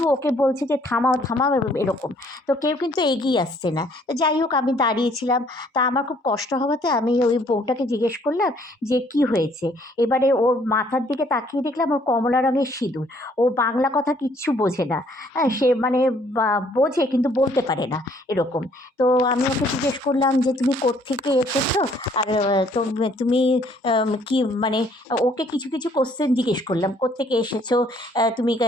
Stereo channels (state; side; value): normal; both; correlation 0.62